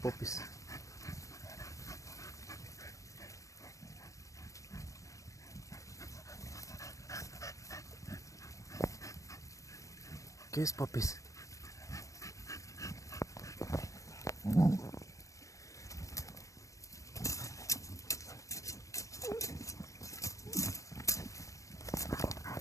¿Qué es, Popis?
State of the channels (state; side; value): late; right; 0.16 ms